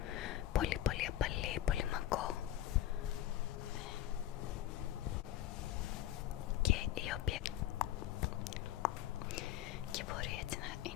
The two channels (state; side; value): quieter; right; 12.6 dB